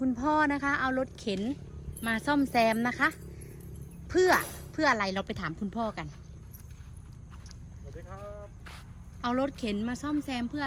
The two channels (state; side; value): identical; both; correlation 1.00